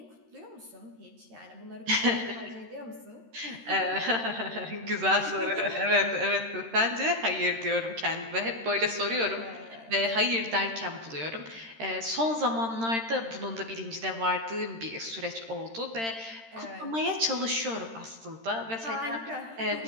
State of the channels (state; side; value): late; left; 13 ms